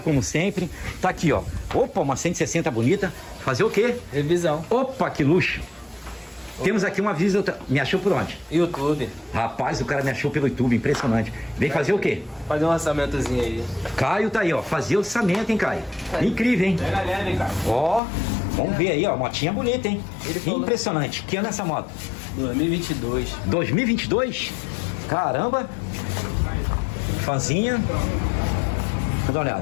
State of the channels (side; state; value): right; drops out; at 18.0 s